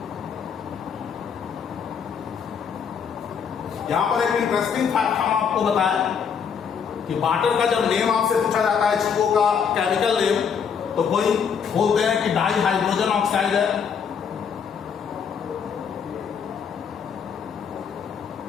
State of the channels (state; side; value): quieter; right; 7.0 dB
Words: यहां पर एक इंटरेस्टिंग फैक्ट हम आपको बताएं कि वाटर का जब नेम आपसे पूछा जाता है, H2O का केमिकल नेम, तो कोई बोलते हैं कि डाई हाइड्रोजन ऑक्साइड है,